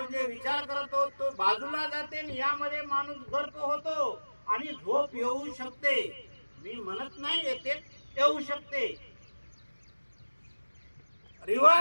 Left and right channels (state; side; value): inverted; both; correlation -1.00